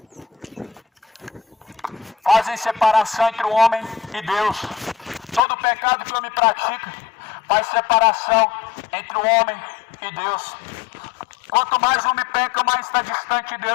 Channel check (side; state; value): right; drops out; at 5.4 s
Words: Fazem separação entre o homem e Deus. Todo pecado que o homem pratica faz separação entre o homem e Deus. Quanto mais o homem peca, mais está distante de